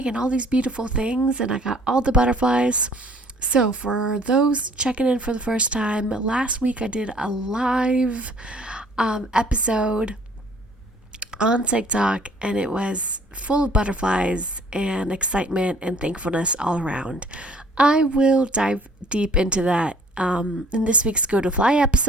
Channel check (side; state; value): both; normal; correlation 0.56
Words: and all these beautiful things, and I got all the butterflies. So for those checking in for the first time, last week I did a live episode on TikTok, and it was full of butterflies and excitement and thankfulness all around. I will dive deep into that in this week's Go to Fly